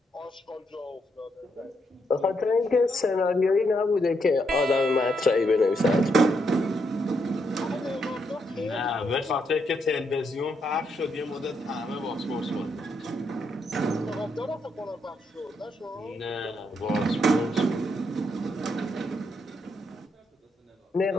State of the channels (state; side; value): normal; both; correlation 0.78